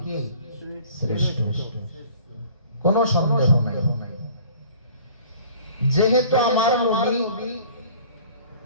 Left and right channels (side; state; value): both; inverted; correlation -0.50